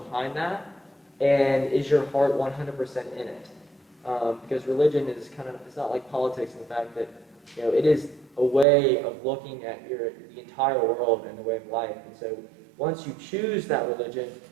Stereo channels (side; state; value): left; drops out; at 8.7 s